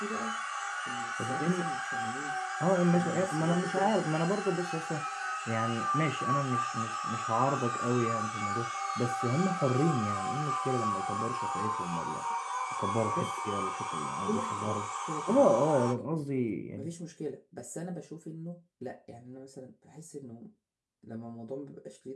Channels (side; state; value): both; identical; correlation 1.00